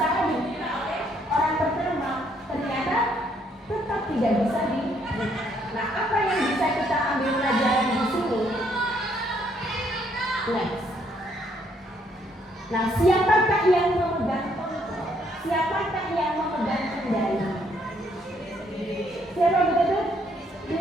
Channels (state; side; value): normal; both; correlation 0.69